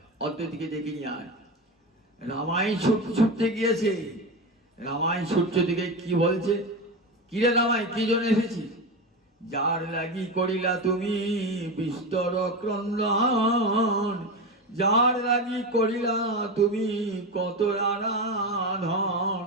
অদ্বৈতকে ডেকে নিয়ে আয়। রামাই ছুটতে গিয়েছে, রামাই ছুটছে দিকে কি বলছে, কিরে রামাই কি জন্য এসেছিস? যার লাগি করিলা তুমি বিস্তর ক্রন্দন, যার লাগি করিলা তুমি কত আরাধন,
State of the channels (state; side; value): normal; both; correlation 0.20